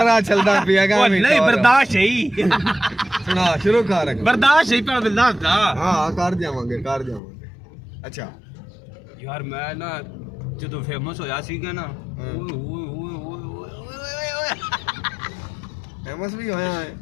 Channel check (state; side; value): drops out; right; at 7.2 s